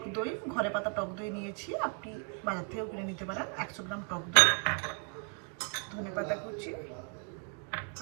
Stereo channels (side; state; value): left; quieter; 34.8 dB